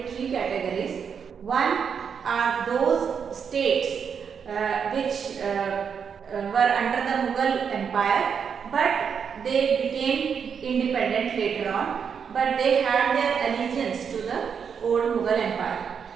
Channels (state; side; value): quieter; left; 6.9 dB